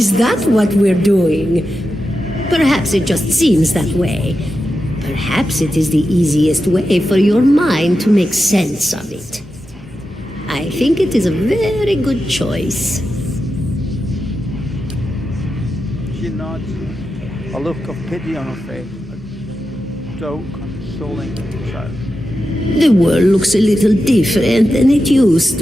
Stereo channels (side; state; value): both; normal; correlation 0.90